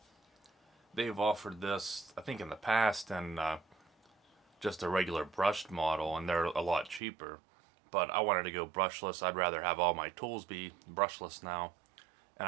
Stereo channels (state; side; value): drops out; left; at 7.0 s